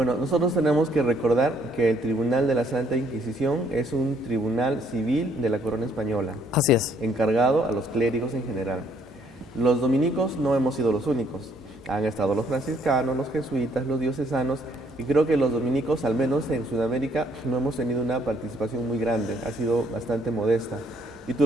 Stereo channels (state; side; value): normal; both; correlation 0.66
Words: nosotros tenemos que recordar que el Tribunal de la Santa Inquisición es un tribunal civil de la corona española. Así es. Encargado a los clérigos en general. Los dominicos no hemos sido los únicos. Han estado los franciscanos, los jesuitas, los diocesanos, y creo que los dominicos, al menos en Sudamérica, no hemos tenido una participación muy grande, ha sido bastante modesta. Y tú